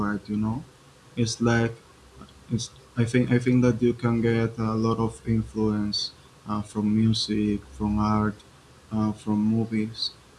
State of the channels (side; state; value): both; identical; correlation 1.00